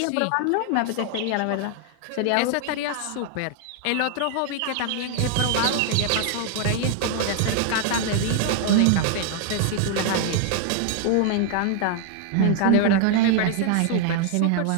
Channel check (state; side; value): different; both; correlation 0.00